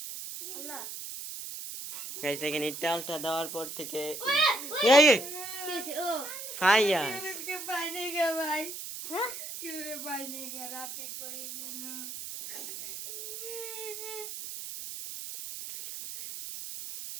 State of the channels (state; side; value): noise; right; hiss, 8 dB below the sound